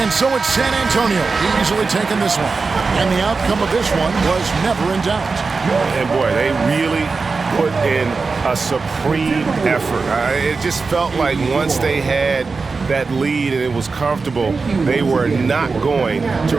so it's San Antonio easily taking this one. And the outcome of this one was never in doubt. And boy, they really put in a supreme effort. It just felt like once they had that lead and it was comfortable, they were not going to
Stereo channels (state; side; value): quieter; left; 4.4 dB